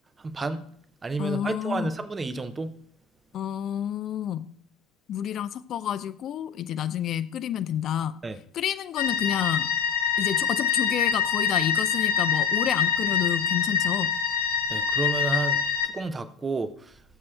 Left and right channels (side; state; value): right; quieter; 6.0 dB